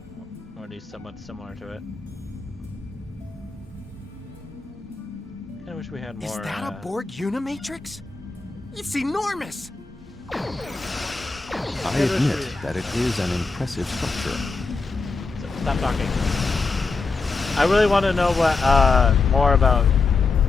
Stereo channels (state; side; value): quieter; right; 4.1 dB